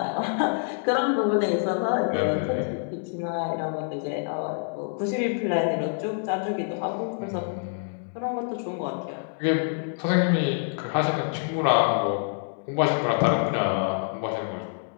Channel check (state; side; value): silent; right; digital silence